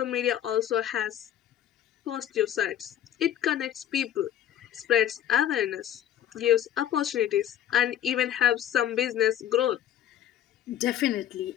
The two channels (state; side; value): quieter; right; 11.0 dB